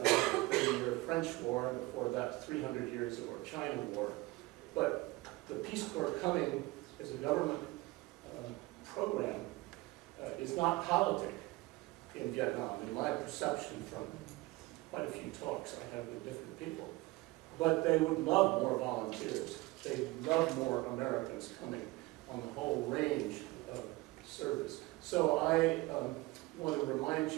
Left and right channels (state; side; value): quieter; left; 21.2 dB